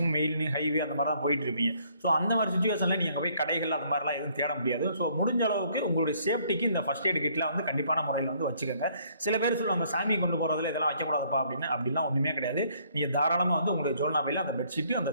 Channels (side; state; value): both; inverted; correlation -0.64